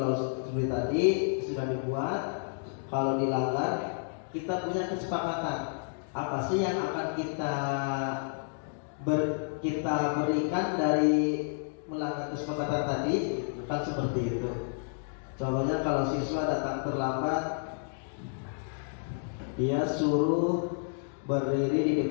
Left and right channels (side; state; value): right; silent; digital silence